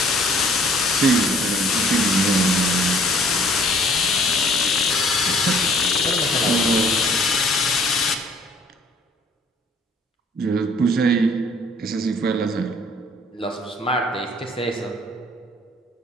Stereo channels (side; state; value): both; normal; correlation 0.57